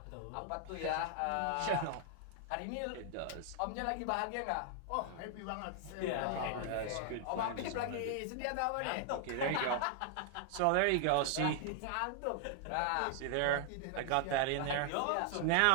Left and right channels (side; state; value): both; different; correlation 0.00